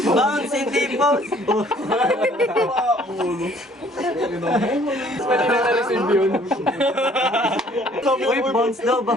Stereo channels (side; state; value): both; normal; correlation 0.58